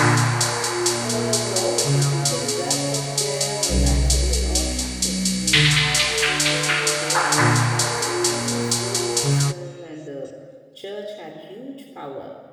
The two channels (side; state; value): both; identical; correlation 1.00